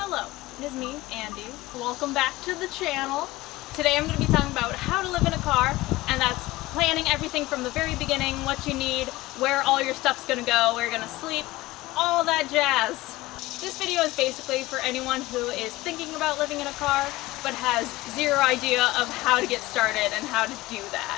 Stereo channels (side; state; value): right; quieter; 18.8 dB